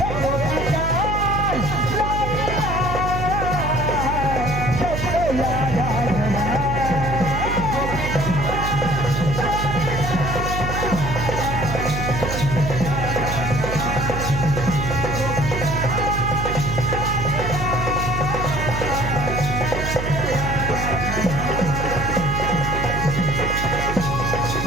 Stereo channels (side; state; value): right; noise; hum, 3 dB below the sound